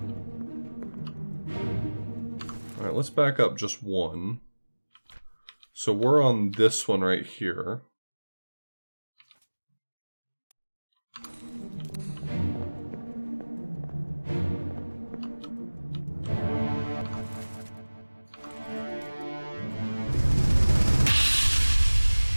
Alright, let's back up just one. So we're on this one right here.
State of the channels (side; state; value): both; inverted; correlation -1.00